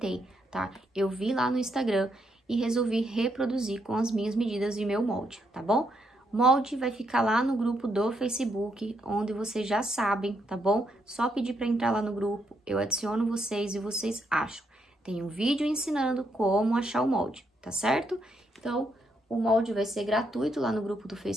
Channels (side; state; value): both; normal; correlation 0.77